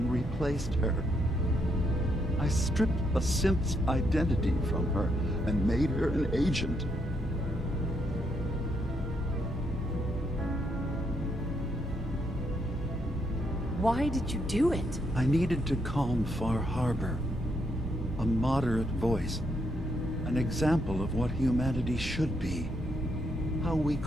replaced her. I stripped a synth's identity from her and made her an agent. Why did you do it? I needed to calm Far Harbor. A moderate voice. An example of what humanity should be. How we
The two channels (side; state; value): both; normal; correlation 0.76